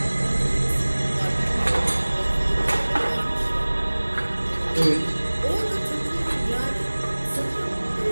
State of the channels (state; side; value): inverted; both; correlation -1.00